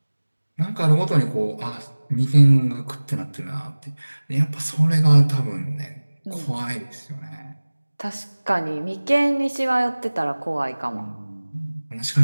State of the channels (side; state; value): both; inverted; correlation -1.00